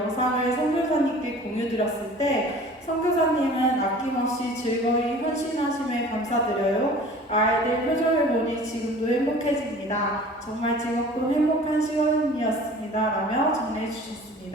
선교사님께 공유드렸을 때 선교사님은 아낌없이 즐거이 헌신하심에 감사드려요. 아이들 표정을 보니 지금도 행복해집니다. 정말 즐겁고 행복한 시간이었습니다. 라며 정리해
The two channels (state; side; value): normal; both; correlation 0.45